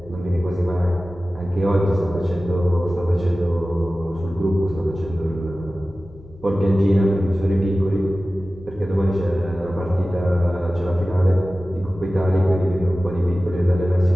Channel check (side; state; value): left; noise; hum, 22 dB below the sound